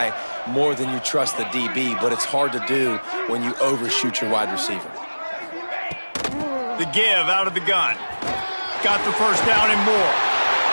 more than you trust the DB, but it's hard to do when you overshoot your wide receiver. The give out of the gun. Got the 1st down and more.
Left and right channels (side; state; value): both; inverted; correlation -1.00